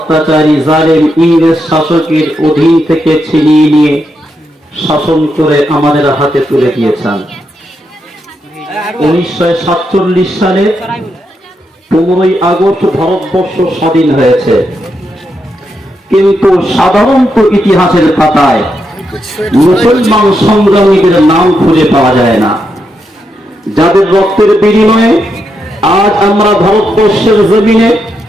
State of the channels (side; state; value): both; normal; correlation 0.83